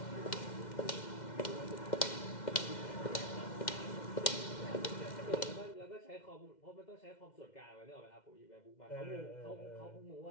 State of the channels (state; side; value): late; right; 2.1 ms